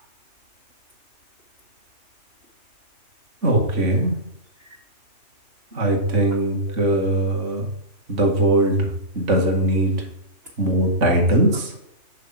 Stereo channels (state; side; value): late; left; 3.4 ms